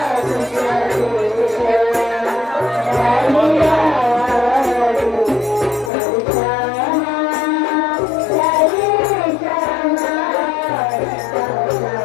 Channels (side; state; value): right; drops out; at 5.9 s